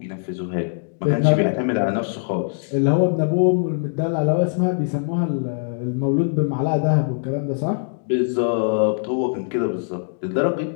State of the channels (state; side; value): silent; right; digital silence